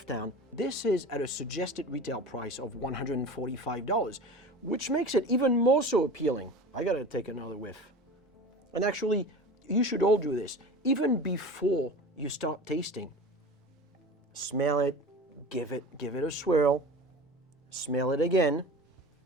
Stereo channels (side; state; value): both; normal; correlation 0.34